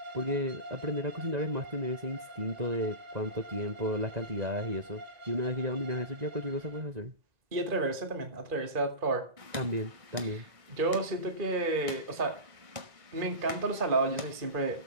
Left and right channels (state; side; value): late; left; 2.0 ms